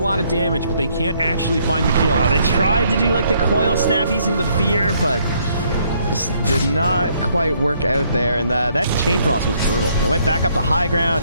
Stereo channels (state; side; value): inverted; both; correlation -0.68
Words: of damage, but they can't actually find the kill. They tried to do like the coil snap using the fear, but just did not quite work out there. And that chain frost was brutal. They went back up to high